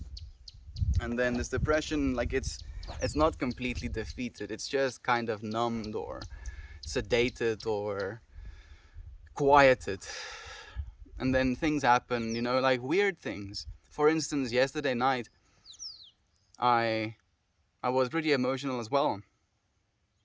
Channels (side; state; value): both; identical; correlation 1.00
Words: And then this depression, like it's not completely defeated. It's just kind of numbed or sedated or quieted. And then things happen, like weird things. For instance, yesterday night, I I was pretty emotional as well,